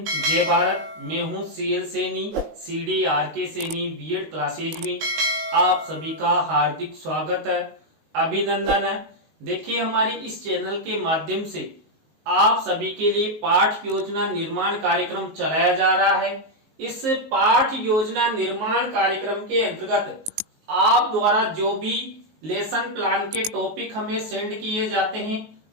जय भारत। मैं हूं CL Saini, CD RK Saini BEd classes में आप सभी का हार्दिक स्वागत है, अभिनंदन है। देखिए, हमारे इस चैनल के माध्यम से आप सभी के लिए पाठ योजना निर्माण कार्यक्रम चलाया जा रहा है। इस पाठ योजना निर्माण कार्यक्रम के अंतर्गत आप द्वारा जो भी लेसन प्लान के टॉपिक हमें सेंड किए जाते हैं,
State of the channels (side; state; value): left; late; 19 ms